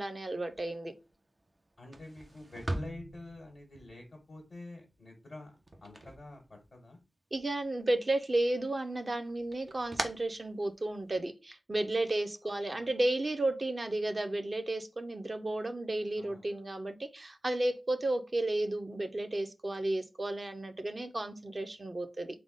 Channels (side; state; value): both; normal; correlation 0.96